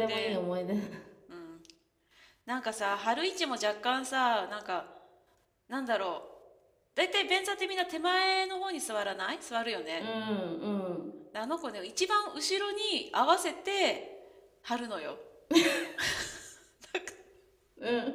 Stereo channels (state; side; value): identical; both; correlation 1.00